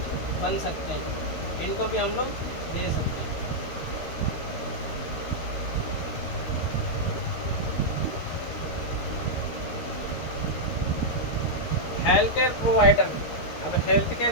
बन सकते हैं, इनको भी हम लोग दे सकते हैं। हेल्थ केयर प्रोवाइडर, अब हेल्थ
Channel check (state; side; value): late; right; 13 ms